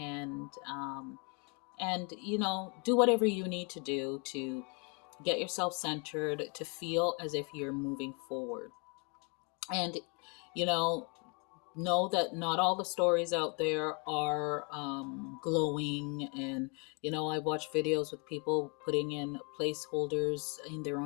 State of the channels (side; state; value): right; quieter; 33.0 dB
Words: you know, do whatever you need to do to get yourself centered, to feel as if you're moving forward. And, you know that not all the stories out there are glowing. And, you know, I watch videos with people putting in placeholders in their